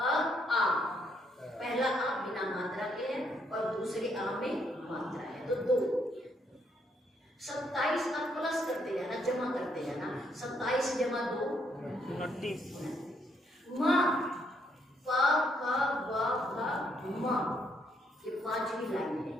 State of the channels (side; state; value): both; normal; correlation 0.73